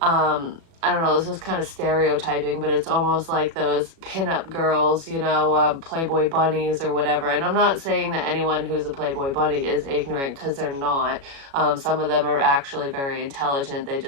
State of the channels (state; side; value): late; left; 36 ms